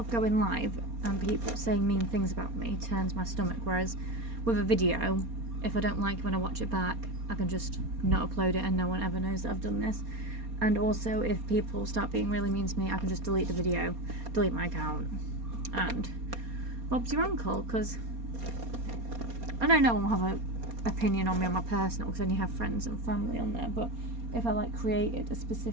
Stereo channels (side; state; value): left; late; 4.2 ms